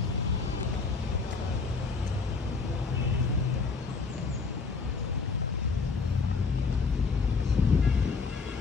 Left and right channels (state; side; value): quieter; right; 4.7 dB